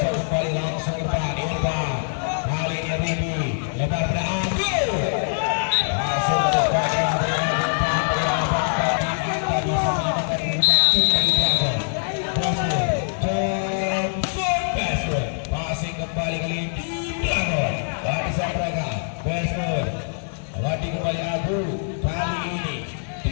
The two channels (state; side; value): silent; right; digital silence